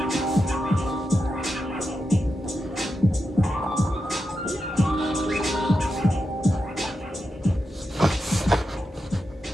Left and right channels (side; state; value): both; normal; correlation 0.88